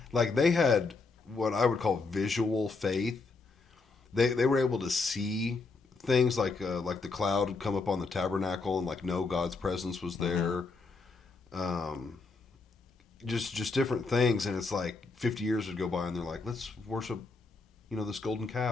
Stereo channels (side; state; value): right; quieter; 4.0 dB